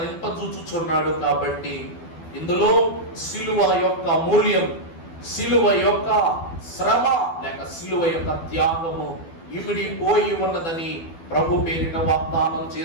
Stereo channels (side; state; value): right; late; 12 ms